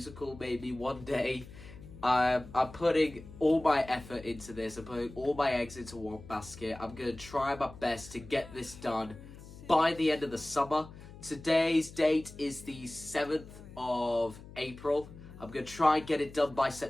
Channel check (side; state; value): left; noise; hum, 17 dB below the sound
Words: maybe one day. I'm putting all my effort into this. I'm putting all my eggs into one basket. I'm going to try my best to get this done by the end of the summer. Today's date is the 7th of April. I'm going to try and get it done by